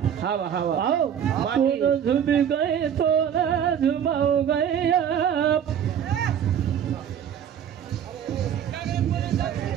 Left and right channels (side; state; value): left; quieter; 8.9 dB